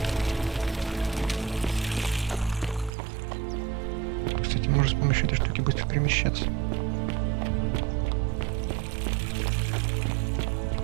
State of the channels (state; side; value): drops out; left; at 2.9 s